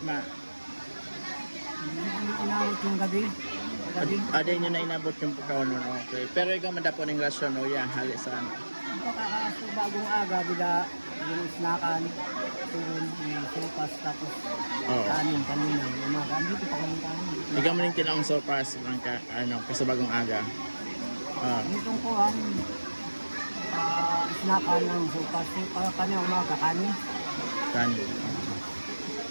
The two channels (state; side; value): inverted; both; correlation -1.00